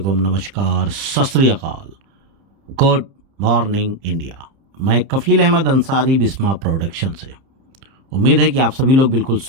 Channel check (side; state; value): left; late; 30 ms